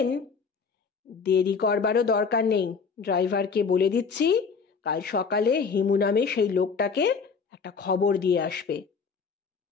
দেরি করবারও দরকার নেই, ড্রাইভারকে বলে দিচ্ছি কাল সকালে হিমু নামে সেই লোকটাকে একটা খবর দিয়ে আসবে।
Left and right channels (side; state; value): right; quieter; 5.5 dB